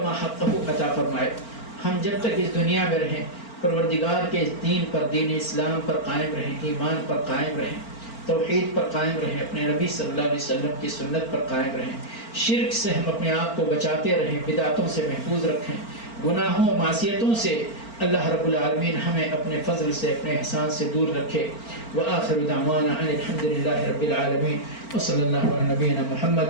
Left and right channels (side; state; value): right; late; 4.4 ms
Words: حقہ عطا فرمائے. ہم جب تک اس دنیا میں رہیں پروردگار کے دین پر، دین اسلام پر قائم رہیں، ایمان پر قائم رہیں، توحید پر قائم رہیں، اپنے نبی صلی اللہ علیہ وسلم کی سنت پر قائم رہیں. شرک سے ہم اپنے آپ کو بچاتے رہیں، بدعتوں سے محفوظ رکھیں، گناہوں معصیتوں سے اللہ رب العالمین ہمیں اپنے فضل سے، اپنے احسان سے دور رکھے. وآخر دعوانا ان الحمد للہ رب العالمین وصلی اللہ علی نبینا